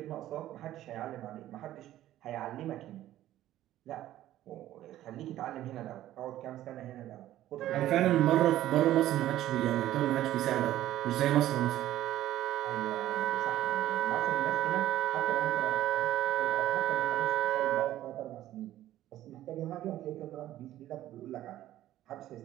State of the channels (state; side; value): quieter; left; 13.6 dB